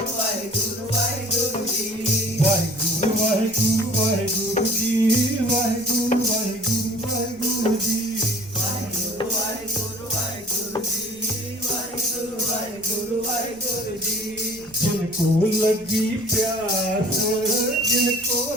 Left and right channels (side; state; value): left; noise; rumble, 26 dB below the sound